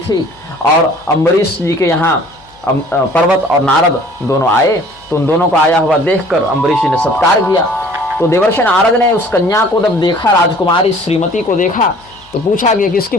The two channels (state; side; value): noise; left; hum, 30 dB below the sound